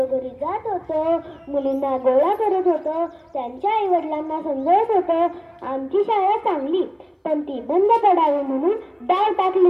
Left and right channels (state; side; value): identical; both; correlation 1.00